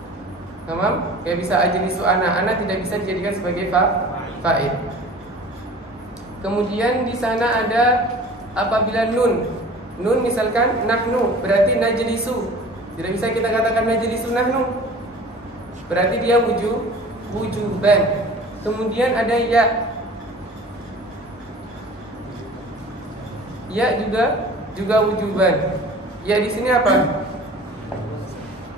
Tamam? Enggak bisa ajlisu ana. Ana tidak bisa dijadikan sebagai fa'il. Kemudian di sana ada apabila nun. Nun misalkan nahnu, berarti najlisu. Tidak bisa kita katakan najlisu nahnu. Berarti dia wujuban. Kemudian ada ya. Ya juga wujuban. Ya di sini apa?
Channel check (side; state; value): both; normal; correlation 0.43